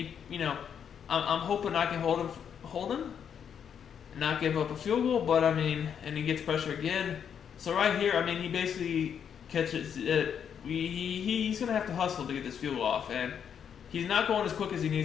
you know, I'm hoping I can hold him, and not give up a field goal. But I mean, and he gets pressure again. So right here, I mean, he basically catches it. He's gonna have to hustle to get this field goal off, and he's not going as quick as he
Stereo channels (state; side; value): quieter; right; 8.0 dB